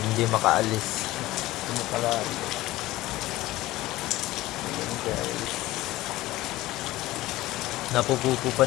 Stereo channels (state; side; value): quieter; right; 17.4 dB